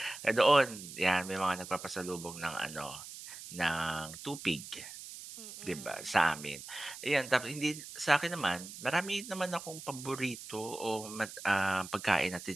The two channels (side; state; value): right; noise; hiss, 12 dB below the sound